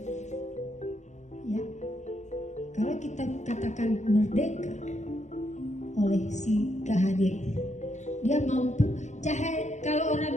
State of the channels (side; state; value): right; late; 0.34 ms